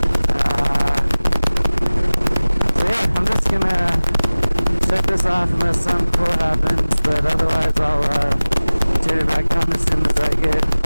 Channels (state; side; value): inverted; both; correlation -0.99